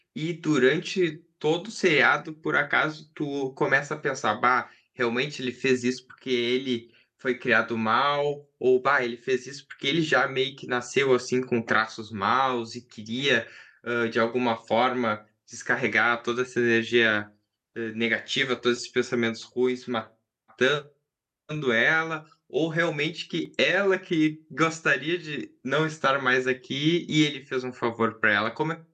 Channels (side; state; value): both; identical; correlation 1.00